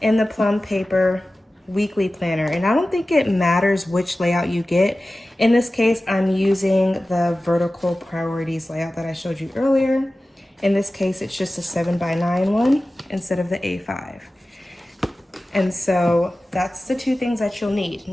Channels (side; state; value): both; normal; correlation 0.96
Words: and the Plum Paper Weekly Planner. And I don't think it matters which layout you get. In this case, I'm using the Vertical Priorities layout that I showed you earlier. In this case, it's just a 7x9 one instead of the A5. And so that's the two things that you'll need.